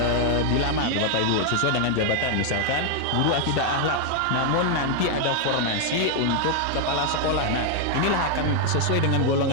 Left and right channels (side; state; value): both; different; correlation 0.00